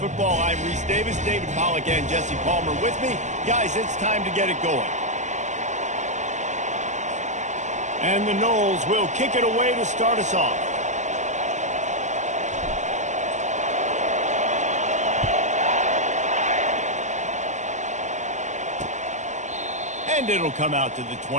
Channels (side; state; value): left; late; 0.34 ms